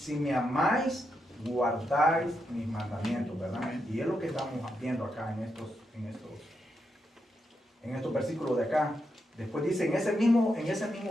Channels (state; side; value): normal; both; correlation 0.83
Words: me amáis, guardáis mis mandamientos, ¿verdad? Y es lo que estamos viendo acá en estos versículos de acá. Después dice, en ese mismo